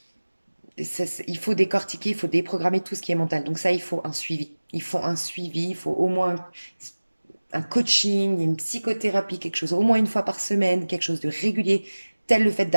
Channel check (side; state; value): both; inverted; correlation -1.00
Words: il faut décortiquer, il faut déprogrammer tout ce qui est mental. Donc ça, il faut un suivi. Il faut un suivi, il faut au moins un coaching, une psychothérapie, quelque chose au moins une fois par semaine, quelque chose de régulier, tel le fait